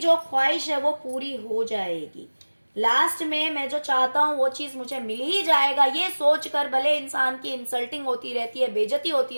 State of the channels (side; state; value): both; inverted; correlation -1.00